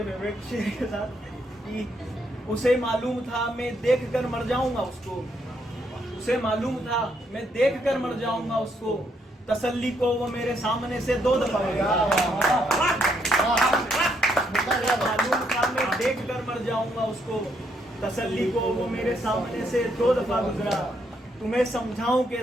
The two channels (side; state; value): both; normal; correlation 0.74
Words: फेवरेट शेर के साथ कि उसे मालूम था मैं देख कर मर जाऊंगा उसको, उसे मालूम था मैं देख कर मर जाऊंगा उसको, तसल्ली को वो मेरे सामने से 2 दफा मालूम था मैं देख कर मर जाऊंगा उसको, तसल्ली को वो मेरे सामने से 2 दफा गुजरा। तुम्हें समझाऊं